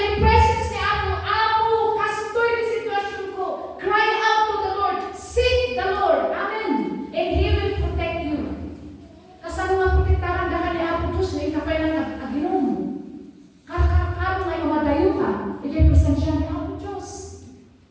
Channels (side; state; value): both; identical; correlation 1.00